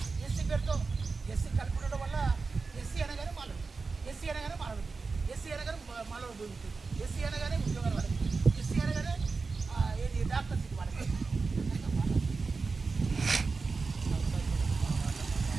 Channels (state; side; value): quieter; left; 4.3 dB